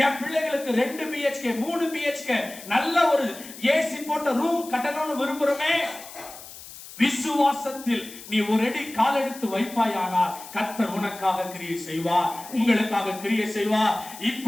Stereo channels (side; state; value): left; noise; hiss, 15 dB below the sound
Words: என் பிள்ளைகளுக்கு 2 BHK 3 BHK நல்ல ஒரு ஏசி போட்ட ரூம் கட்டணும்னு விரும்புறோமே. விசுவாசத்தில் நீ ஒரு அடி கால் எடுத்து வைப்பாயானால் கர்த்தர் உனக்காக கிரியை செய்வார், உங்களுக்காக கிரியை செய்வார்.